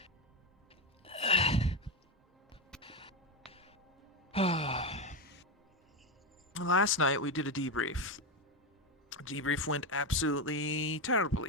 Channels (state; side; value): normal; both; correlation 0.11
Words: Last night we did a debrief. Debrief went absolutely